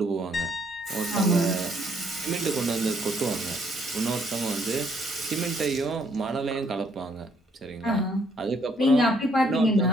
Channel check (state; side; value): normal; both; correlation 0.68